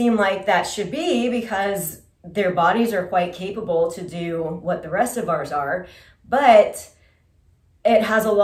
like that should be, because their bodies are quite capable to do what the rest of ours are, but it has a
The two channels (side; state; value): both; identical; correlation 1.00